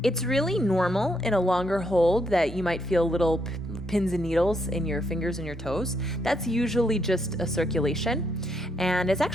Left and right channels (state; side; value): normal; both; correlation 0.76